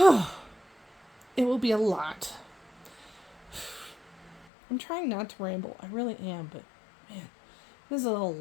will be a lot. I'm trying not to ramble. I really am, but man, this is a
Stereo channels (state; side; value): drops out; right; at 4.5 s